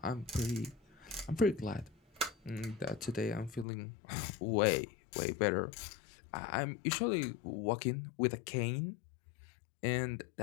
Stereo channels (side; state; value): right; drops out; at 3.7 s